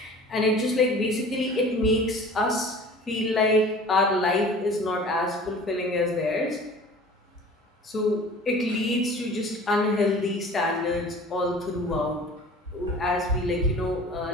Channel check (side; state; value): both; normal; correlation 0.44